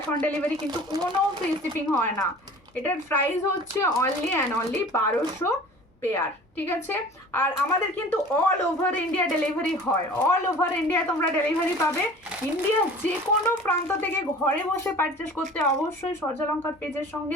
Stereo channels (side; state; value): both; normal; correlation 0.44